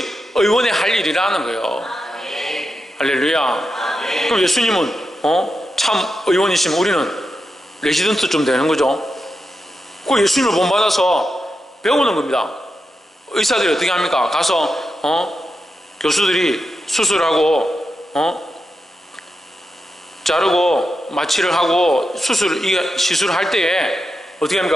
의원의 할 일이라는 거예요. 할렐루야. 그럼 예수님은 참 의원이시면 우리는 레지던트 좀 되는 거죠. 그 예수님을 본받아서 배우는 겁니다. 의사들이 어떻게 합니까? 가서 교수들이 수술하고 자르고 마취를 하고 시술할 때에 어떻게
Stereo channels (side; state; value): both; normal; correlation 0.88